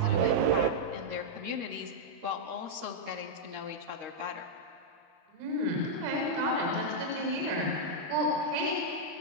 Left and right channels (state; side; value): late; left; 13 ms